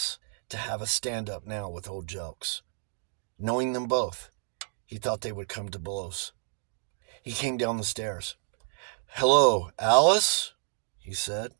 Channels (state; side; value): silent; left; digital silence